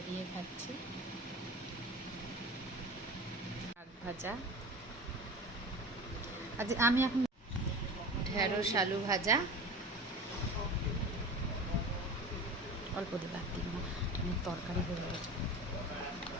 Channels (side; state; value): both; normal; correlation 0.34